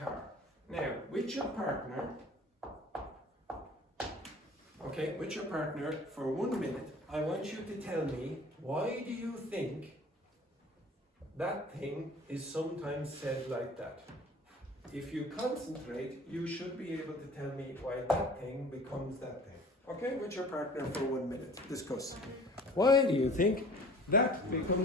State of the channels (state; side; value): normal; both; correlation 0.46